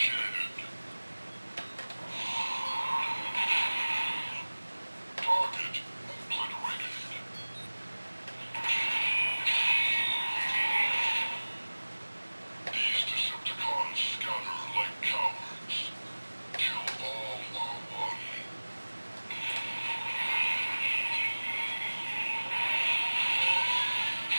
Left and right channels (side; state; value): both; inverted; correlation -1.00